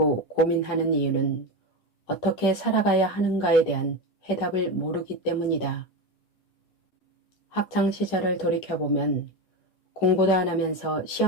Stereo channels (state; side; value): late; right; 10 ms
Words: 고민하는 이유는 어떻게 살아가야 하는가에 대한 해답을 모르기 때문이다. 학창시절을 돌이켜보면 공부도 안 하면서